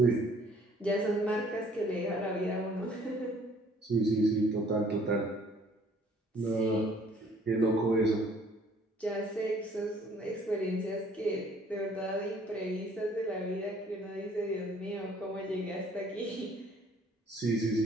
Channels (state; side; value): normal; both; correlation 0.58